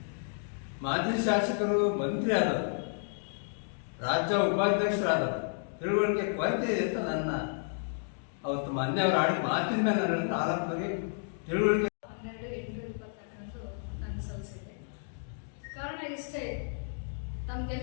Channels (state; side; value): silent; right; digital silence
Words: ಮಾಜಿ ಶಾಸಕರು ಮಂತ್ರಿ ಆದವರು, ರಾಜ್ಯ ಉಪಾಧ್ಯಕ್ಷರಾದವರು, ತಿಳುವಳಿಕೆ ಕೊರತೆ ಇದೆ ಅಂತ ನನ್ನ ಅವತ್ತು ಮೊನ್ನೆ ಅವರು ಆಡಿದ ಮಾತಿನ ಮೇಲೆ ನನ್ನ ಆರೋಪಕ್ಕೆ ತಿಳುವಳಿಕೆ 12/8/2022 ನಾನು ಸಲ್ಲಿಸಿದೆ. ಕಾರಣ ಇಷ್ಟೇ,